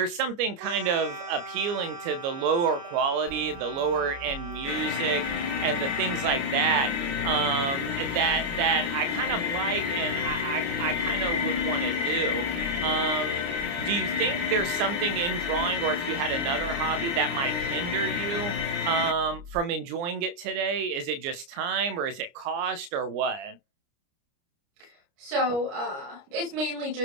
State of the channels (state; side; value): late; left; 29 ms